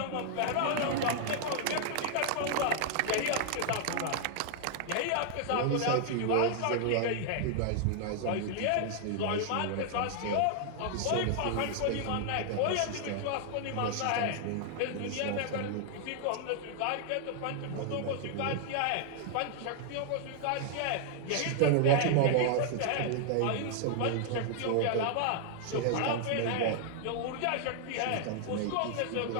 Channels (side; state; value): both; different; correlation 0.00